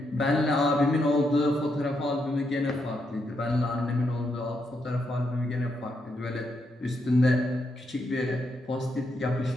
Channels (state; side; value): normal; both; correlation 0.80